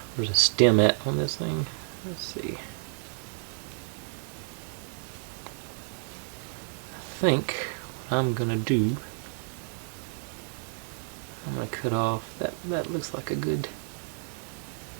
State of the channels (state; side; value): silent; left; digital silence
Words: a stem at on this thing. Let's see. I think what I'm gonna do, I'm gonna cut off that looks like a good,